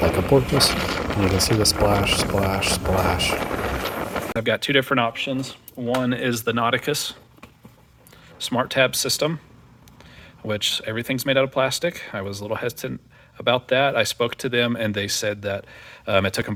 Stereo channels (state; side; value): identical; both; correlation 1.00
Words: a porpoise, and you can see the splash, splash, splash. I've got 2 different options. One is the Nauticus smart tab system, which everything's made out of plastic. I was a little hesitant about that. I spoke to them and they said that it took them